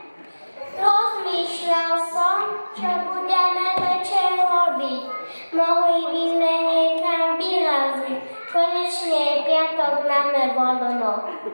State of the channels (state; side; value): inverted; both; correlation -1.00